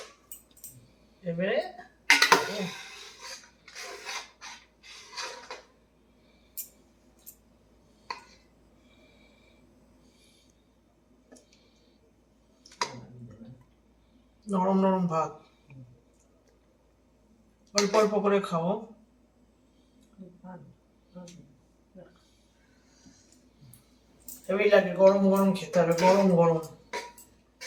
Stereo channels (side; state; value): both; identical; correlation 1.00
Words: এবারে নরম নরম ভাত, অল্প অল্প করে খাবো। হেভি লাগে, গরম গরম খেতে হবে, গরম গরম